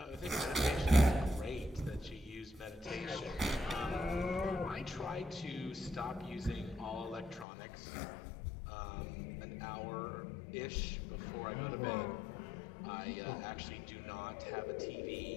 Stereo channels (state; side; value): drops out; right; at 7.5 s